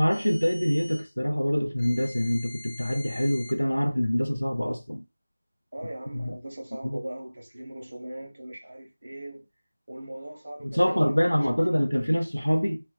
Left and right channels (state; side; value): inverted; both; correlation -0.99